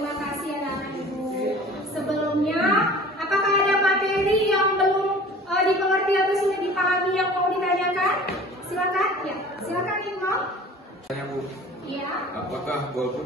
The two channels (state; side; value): normal; both; correlation 0.44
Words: kasih anak-anak ibu. Sebelumnya, apakah ada materi yang belum dimengerti atau sudah dipahami yang mau ditanyakan? Silakan. Ya, silakan Ibu. Tanya Bu, Iya. apakah